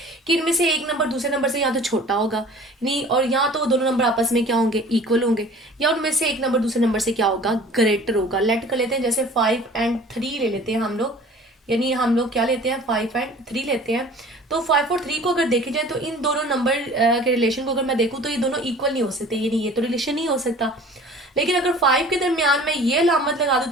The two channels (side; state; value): both; normal; correlation 0.46